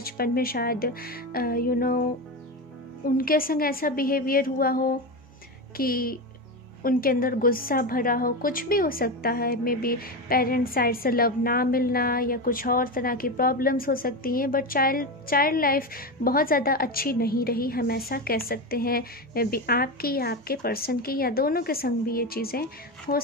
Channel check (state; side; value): normal; both; correlation 0.18